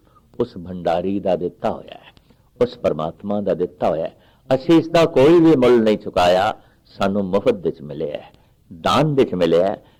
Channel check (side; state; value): both; identical; correlation 1.00